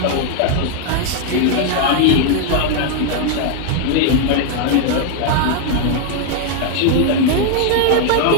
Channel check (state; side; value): different; both; correlation 0.00